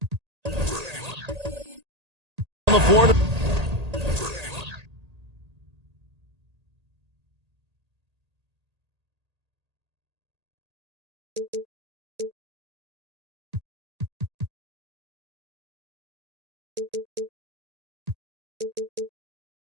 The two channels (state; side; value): late; left; 1.8 ms